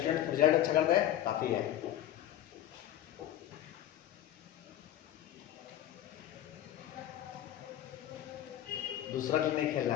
रिजल्ट अच्छा कर दे काफ़ी है। दूसरा गेम नहीं खेलना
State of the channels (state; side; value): quieter; right; 12.0 dB